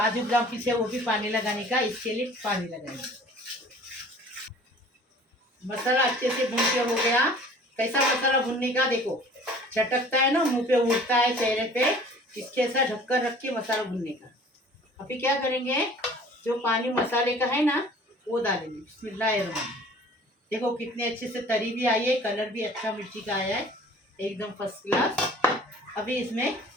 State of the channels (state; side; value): normal; both; correlation 0.48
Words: बादाम पीसे वो भी पानी लगाने का, इसके लिए पानी लगाएंगे। मसाला अच्छे से भून के हो गया। कैसा मसाला भूनने का, देखो चटकता है ना, मुंह पे उड़ता है, चेहरे पे, इसके ऐसा ढक्कन रख के मसाला भूनने का। अभी क्या करेंगे, जो पानी मसाले का है ना, वो डालेंगे। बिस्मिल्लाहिर्रहमानिर्रहीम। देखो कितने अच्छे से तरी भी आई है, कलर भी अच्छा मिर्ची का आया है, एकदम फर्स्ट क्लास। अभी इसमें